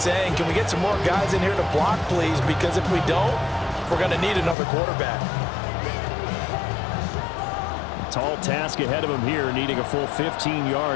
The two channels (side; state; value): right; drops out; at 4.5 s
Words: can we get some more guys in here to block, please? Because if we don't, we're going to need another quarterback. Tall task ahead of him here, needing a full 15